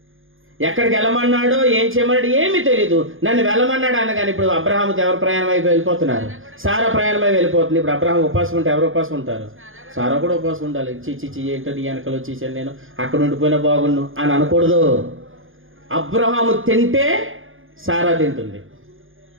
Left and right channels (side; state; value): left; late; 0.59 ms